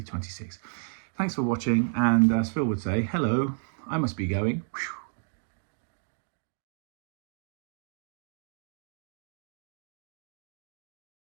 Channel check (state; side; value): silent; left; digital silence